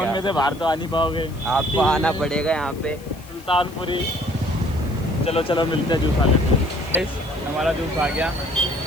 क्या? में से बाहर तो आ नहीं पाओगे। आपको आना पड़ेगा यहाँ पे सुल्तानपुरी। चलो चलो मिलते हैं, जूस आ लेते हैं। हमारा जूस आ गया।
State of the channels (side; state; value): left; noise; hiss, 22 dB below the sound